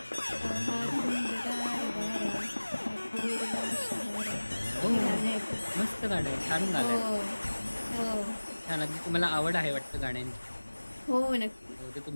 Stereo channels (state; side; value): inverted; both; correlation -1.00